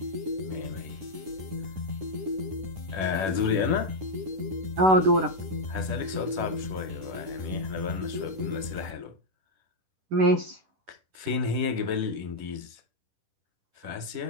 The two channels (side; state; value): left; late; 10 ms